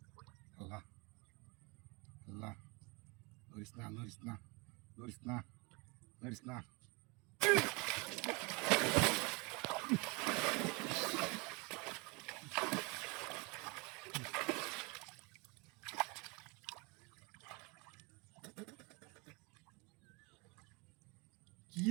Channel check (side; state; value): left; quieter; 28.7 dB